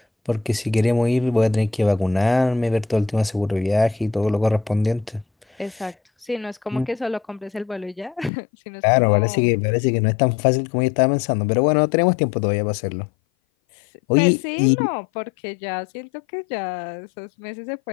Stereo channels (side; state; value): right; drops out; at 8.3 s